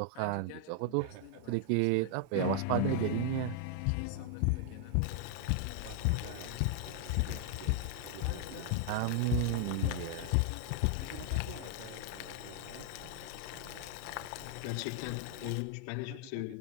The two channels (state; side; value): different; both; correlation 0.00